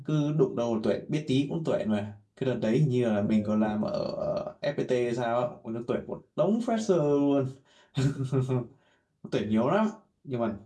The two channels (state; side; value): identical; both; correlation 1.00